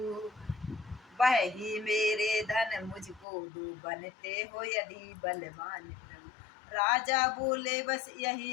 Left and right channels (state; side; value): drops out; right; at 3.2 s